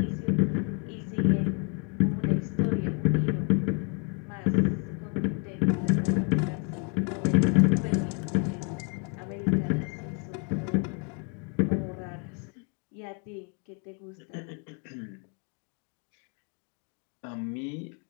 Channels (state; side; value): quieter; right; 35.4 dB